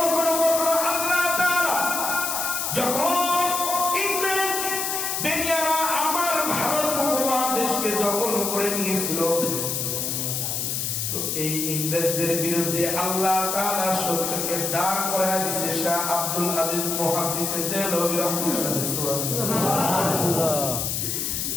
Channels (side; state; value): left; noise; hiss, 1 dB below the sound